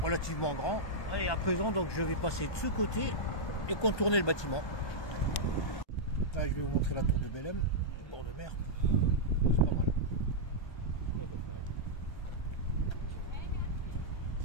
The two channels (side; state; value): right; late; 1.2 ms